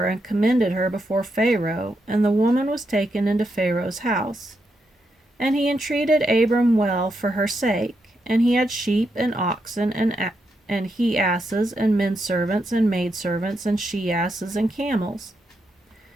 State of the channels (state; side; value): normal; both; correlation 0.82